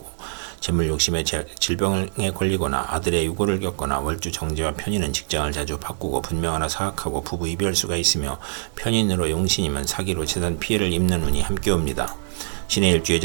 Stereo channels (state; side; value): silent; left; digital silence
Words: 재물 욕심에 질병에 걸리거나 아들의 유고를 겪거나, 월주 정제와 편인은 직장을 자주 바꾸고 분명하나 사악하고 부부 이별수가 있으며, 편인으로 용신이면 사기로 재산 피해를 입는 운이 함께 옵니다. 신의 일주